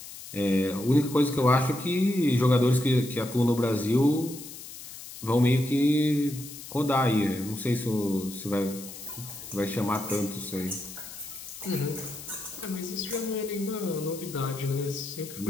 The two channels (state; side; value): noise; left; hiss, 13 dB below the sound